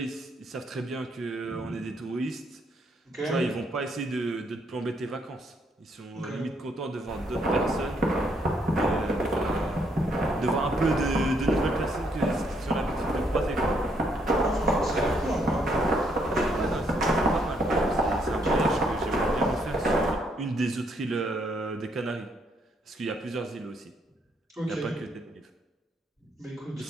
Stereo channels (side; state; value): both; normal; correlation 0.72